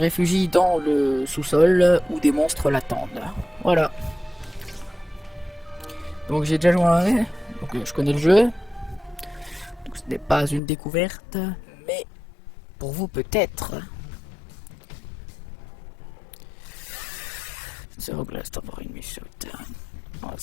dans le sous-sol où des monstres l'attendent. Voilà. Donc j'ai déjà joué à un, donc je connais le jeu. Donc ce n'est pas une découverte, mais pour vous peut-être. Zero glass tambourine me shoot. Voilà,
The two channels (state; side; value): drops out; right; at 10.6 s